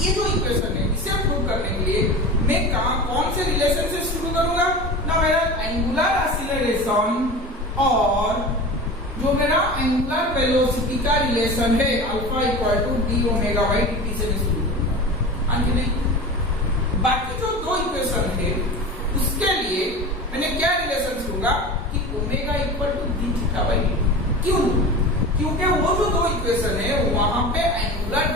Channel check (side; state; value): both; normal; correlation 0.32